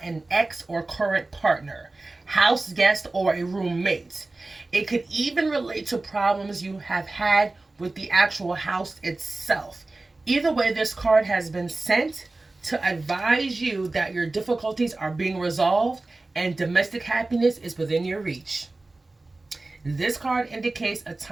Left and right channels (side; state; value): left; quieter; 3.1 dB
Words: ex or current partner, house guest, or a roommate. It could even relate to problems you have had with the actual house itself. Either way, this card has been sent to advise you that your difficulties are being resolved and domestic happiness is within your reach. This card indicates a